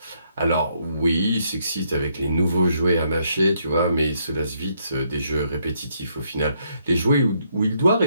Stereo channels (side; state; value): both; inverted; correlation -0.73